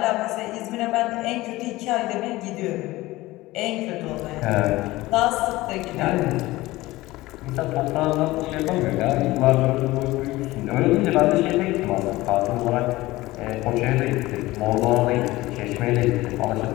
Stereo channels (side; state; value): right; quieter; 18.7 dB